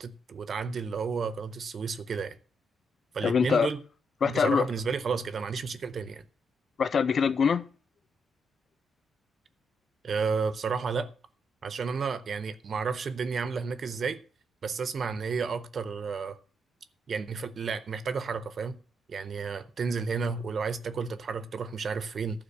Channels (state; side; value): normal; both; correlation 0.77